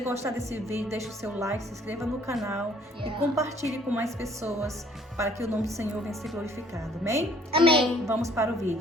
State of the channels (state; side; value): normal; both; correlation 0.59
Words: desse vídeo, deixe o seu like, se inscreva no canal e compartilhe com mais pessoas para que o nome do Senhor venha ser glorificado. Amém? Amém. Vamos para o